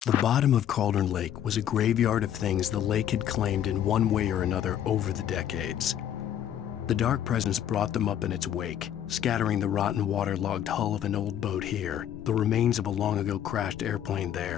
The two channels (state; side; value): quieter; right; 10.3 dB